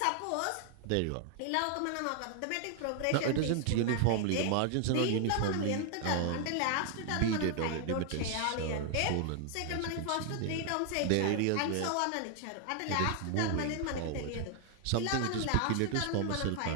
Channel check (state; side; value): different; both; correlation 0.00